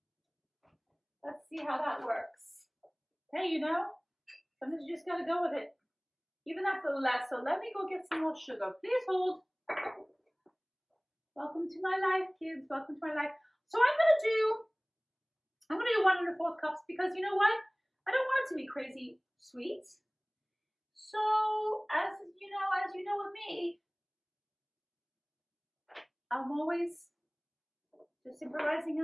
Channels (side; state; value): both; identical; correlation 1.00